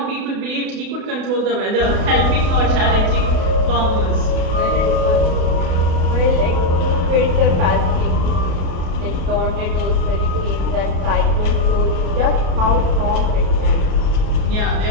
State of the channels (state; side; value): late; left; 32 ms